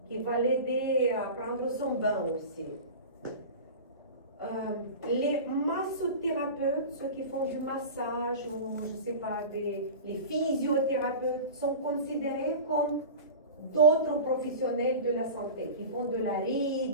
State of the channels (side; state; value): both; inverted; correlation -0.32